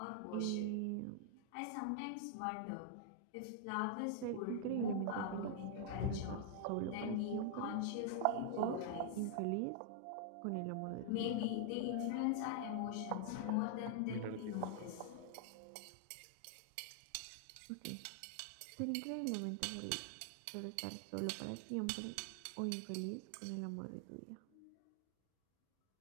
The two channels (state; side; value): different; both; correlation -0.01